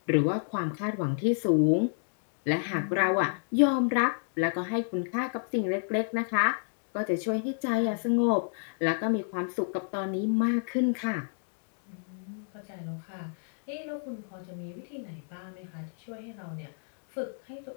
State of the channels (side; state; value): right; silent; digital silence